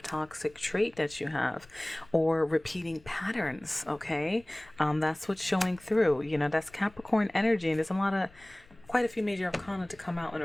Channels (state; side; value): noise; left; rumble, 26 dB below the sound